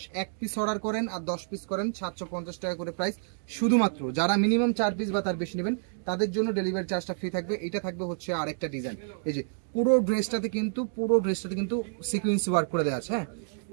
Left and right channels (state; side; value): silent; left; digital silence